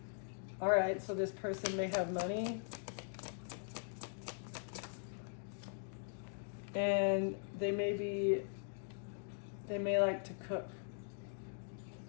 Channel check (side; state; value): right; silent; digital silence